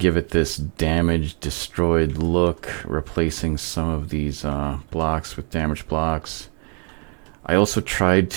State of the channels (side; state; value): left; quieter; 37.6 dB